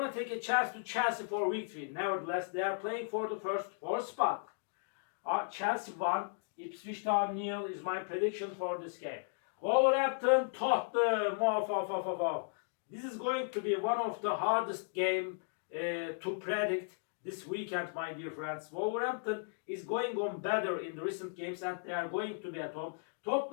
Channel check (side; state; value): right; silent; digital silence